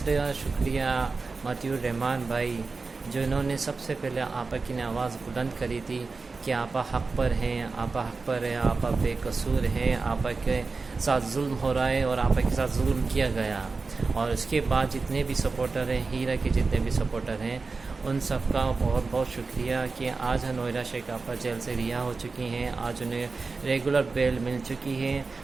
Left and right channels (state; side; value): quieter; left; 4.1 dB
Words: شکریہ مطیع الرحمان بھائی جنہوں نے سب سے پہلے آپا کی نے آواز بلند کری تھی کہ آپا حق پر ہیں، آپا حق پر ہے، آپا بے قصور ہیں، آپا کے ساتھ ظلم ہو رہا ہے اور آپا کے ساتھ ظلم کیا گیا۔ اور اس کے بعد جتنے بھی سپورٹر ہیں، ہیرا کے جتنے بھی سپورٹر ہیں، ان سب کا بہت بہت شکریہ کہ آج نویرہ شیخ آپا جیل سے رہا ہو چکی ہیں، آج انہیں ریگولر بیل مل چکی ہے۔